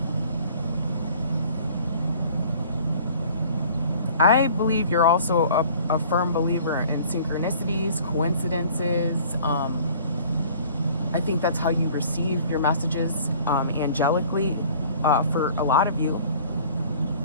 I believe you're also a firm believer in synchronicities, coincidences. I think that's how you receive your messages angelically. For a lot of you,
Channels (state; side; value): inverted; both; correlation -0.50